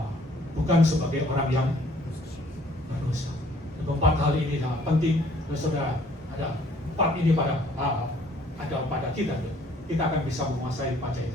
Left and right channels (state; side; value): normal; both; correlation 0.60